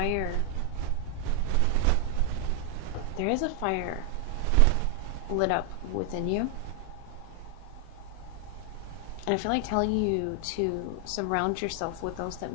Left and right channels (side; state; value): both; different; correlation 0.00